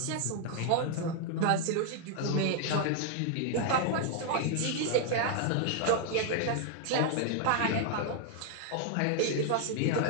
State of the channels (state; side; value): different; both; correlation 0.00